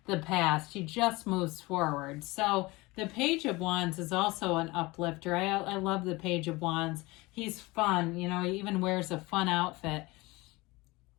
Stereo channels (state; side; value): quieter; right; 22.5 dB